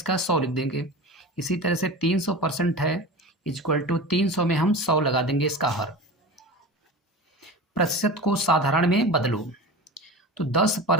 100 लिख देंगे। इसी तरह से 300% है इक्वल टू 300 में हम 100 लगा देंगे इसका हर। प्रतिशत को साधारण में बदलो तो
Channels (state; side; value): normal; both; correlation 0.31